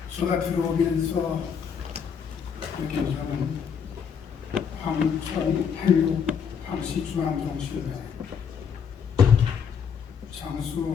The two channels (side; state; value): right; quieter; 7.0 dB